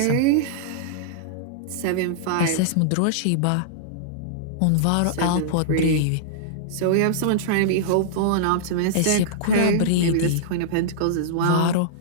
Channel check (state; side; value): different; both; correlation -0.02